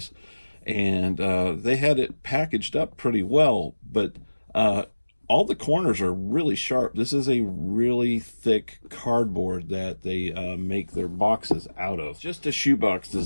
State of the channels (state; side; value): inverted; both; correlation -1.00